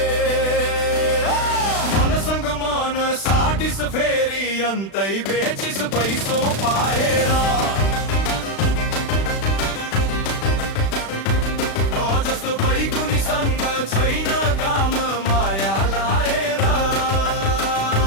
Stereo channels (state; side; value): late; right; 36 ms